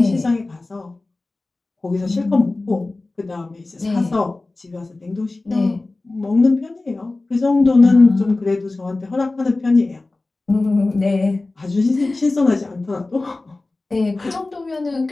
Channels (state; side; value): quieter; right; 3.2 dB